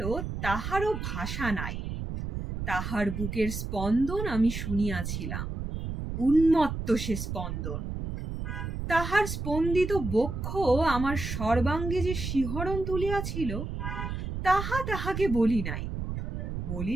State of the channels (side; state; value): right; noise; rumble, 5 dB below the sound